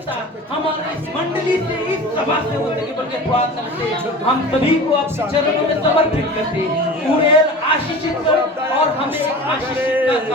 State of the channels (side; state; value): both; normal; correlation 0.36